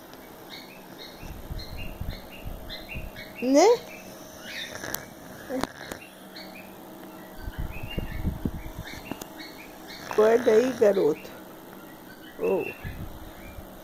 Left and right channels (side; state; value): both; identical; correlation 1.00